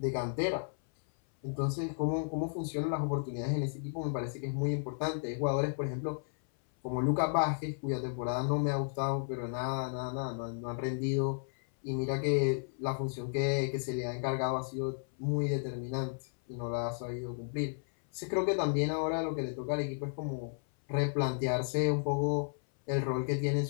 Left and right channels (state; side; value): silent; right; 55 dB below the other